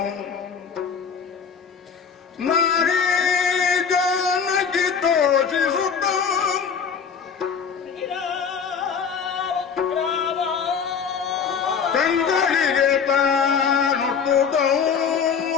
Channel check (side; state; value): right; quieter; 6.5 dB